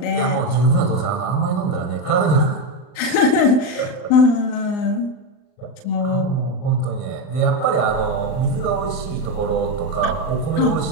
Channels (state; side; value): late; right; 39 ms